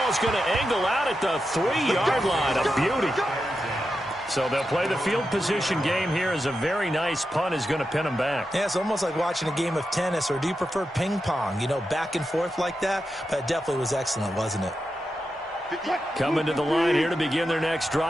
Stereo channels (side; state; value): both; normal; correlation 0.88